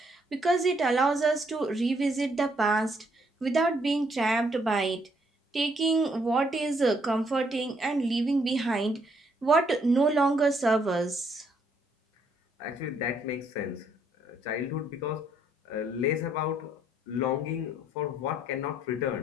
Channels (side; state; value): both; normal; correlation 0.70